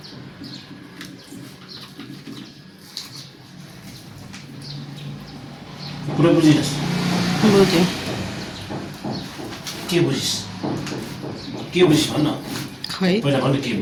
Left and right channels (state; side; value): identical; both; correlation 1.00